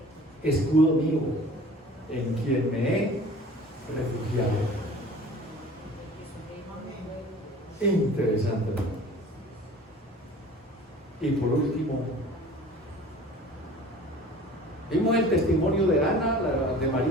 escudo mío, en quien me he refugiado. Interesante, ¿no? Y por último, vimos el testimonio de Ana, de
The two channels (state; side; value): normal; both; correlation 0.45